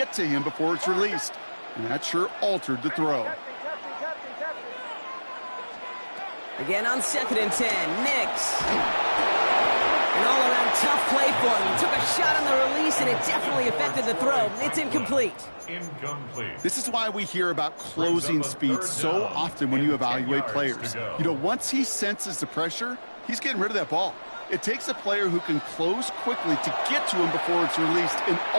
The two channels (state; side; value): inverted; both; correlation -1.00